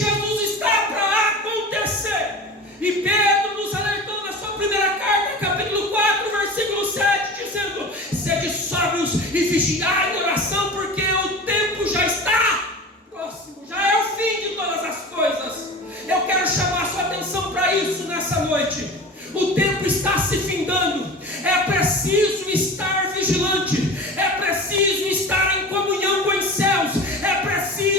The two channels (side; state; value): both; normal; correlation 0.34